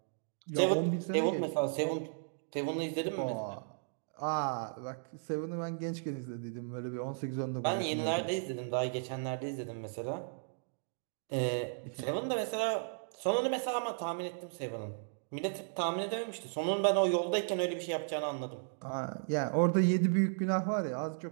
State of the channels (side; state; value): left; silent; digital silence